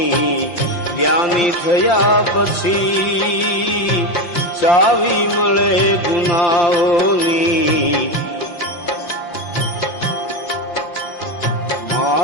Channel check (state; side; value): late; right; 5.7 ms